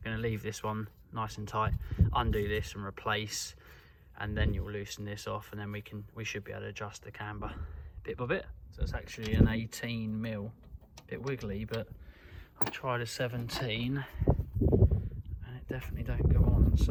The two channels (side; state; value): both; identical; correlation 1.00